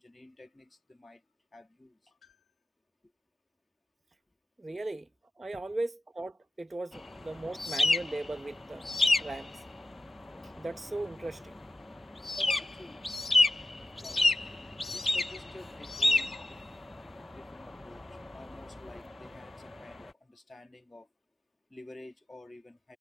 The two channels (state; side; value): normal; both; correlation 0.94